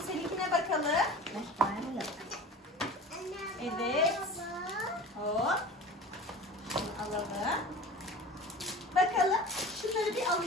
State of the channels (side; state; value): both; normal; correlation 0.37